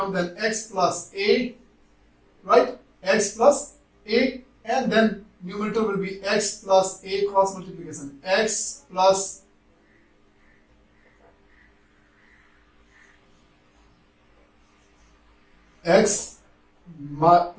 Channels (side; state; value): both; identical; correlation 1.00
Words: then x plus a, right? X plus a, and then numerator will be x plus a cross multiplication, x plus x